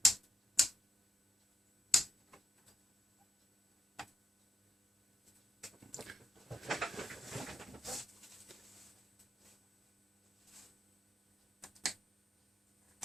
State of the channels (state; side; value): normal; both; correlation 0.84